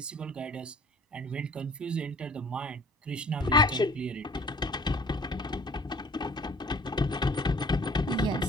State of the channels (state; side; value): normal; both; correlation 0.52